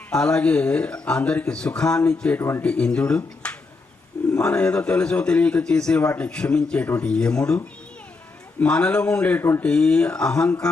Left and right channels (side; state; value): right; quieter; 3.9 dB